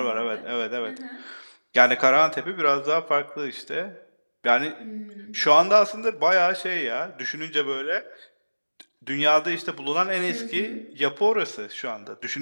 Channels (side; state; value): both; inverted; correlation -1.00